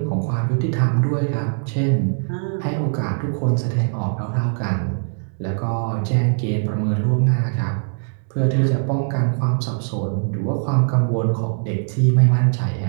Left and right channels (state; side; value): silent; left; 65 dB below the other